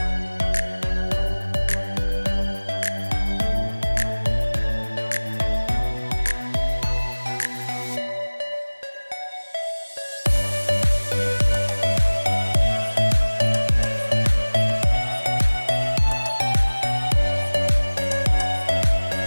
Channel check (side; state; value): both; inverted; correlation -1.00